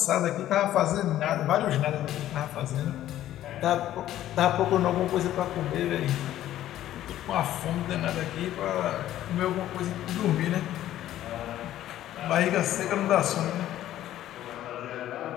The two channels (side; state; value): right; quieter; 12.9 dB